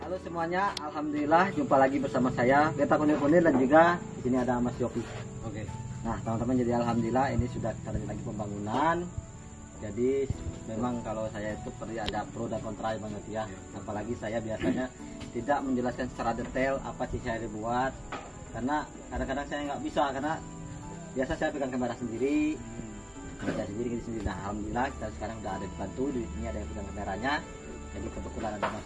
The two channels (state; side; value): identical; both; correlation 1.00